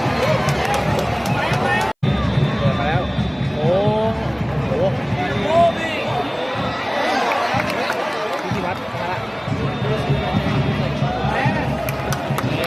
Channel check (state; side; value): identical; both; correlation 1.00